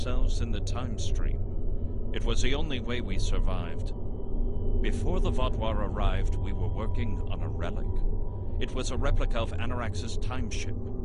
in the time stream. It was the only way we survived. Before the Vaadwaur arrived, we were working on a relic. It was a replica of Anorax's time ship.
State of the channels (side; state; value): both; identical; correlation 1.00